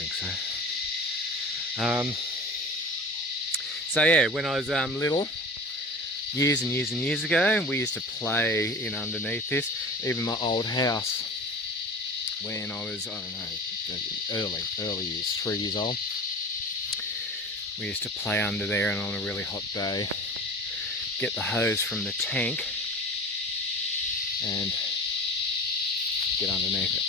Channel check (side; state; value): both; normal; correlation 0.35